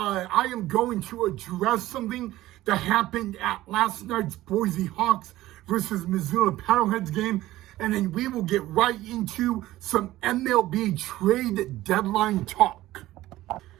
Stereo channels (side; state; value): left; quieter; 16.0 dB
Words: am going to address something that happened at last night's Boise Hawks versus Missoula Paddleheads game. And then we will get right into some MLB trade deadline talk.